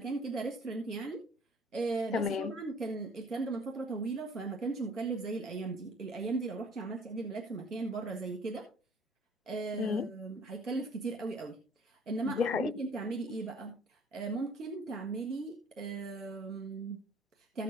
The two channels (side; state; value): both; normal; correlation 0.54